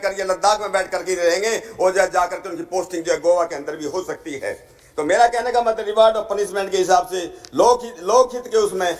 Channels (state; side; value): identical; both; correlation 1.00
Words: करके, लद्दाख में बैठ करके रहेंगे और जाकर के उनकी पोस्टिंग जो है गोवा के अंदर भी हो सकती है। तो मेरा कहने का मतलब रिवार्ड और पनिशमेंट के हिसाब से लोकहित के उसमें